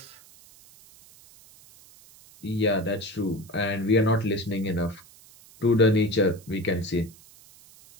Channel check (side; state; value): right; noise; hiss, 24 dB below the sound